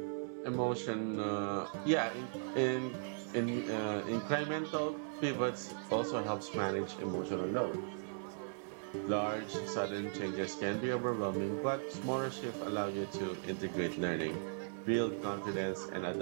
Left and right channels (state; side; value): silent; left; 53 dB below the other